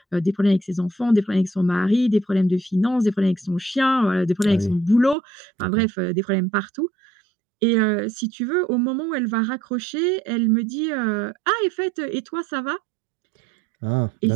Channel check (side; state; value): left; drops out; at 5.2 s